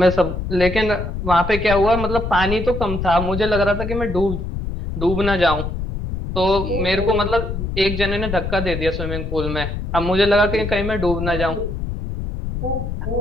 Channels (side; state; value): left; noise; rumble, 5 dB below the sound